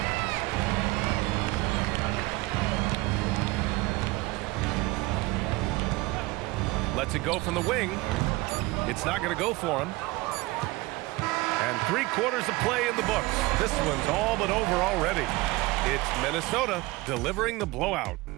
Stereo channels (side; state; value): left; quieter; 21.4 dB